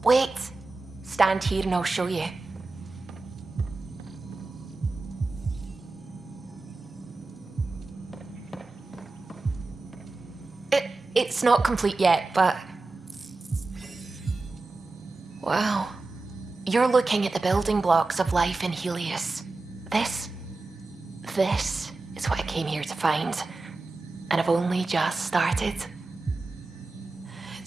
Wait. Stand here and I'll show you. It's not complete yet, but... Wow. You're looking at the building blocks of life in Helios. This is what I came here to find. And I've only just started.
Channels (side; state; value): left; quieter; 3.5 dB